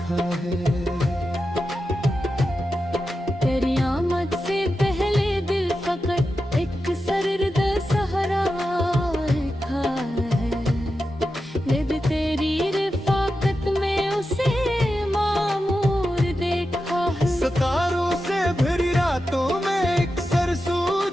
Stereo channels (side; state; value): both; normal; correlation 0.90